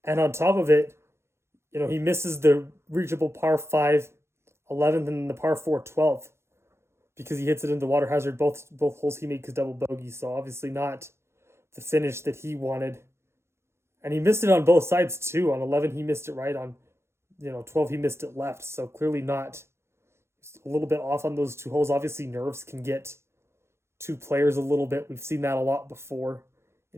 And on top of it, he misses the reachable par 5 11th and the par 4 12th because he hits it into water hazard. Both holes he made his double bogey, so obviously not the finish that he wanted. And he missed it on both sides too. On 11, he missed it right. On 12, he missed it left. So clearly not a little bit off on those two holes. Obviously, nerves can get two players a little bit. We've seen that a lot before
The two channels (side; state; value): left; late; 0.13 ms